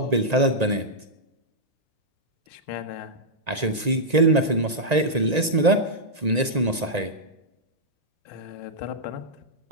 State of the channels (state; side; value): late; left; 1.9 ms